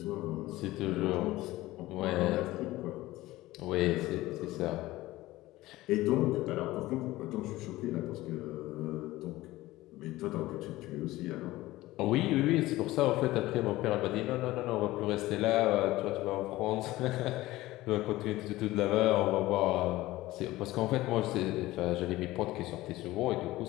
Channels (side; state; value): right; quieter; 17.6 dB